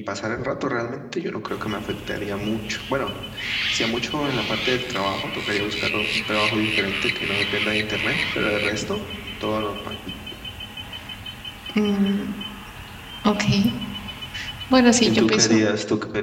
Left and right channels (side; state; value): both; identical; correlation 1.00